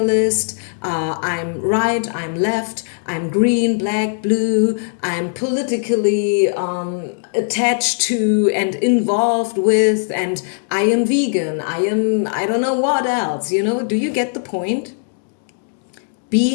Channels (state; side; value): silent; right; digital silence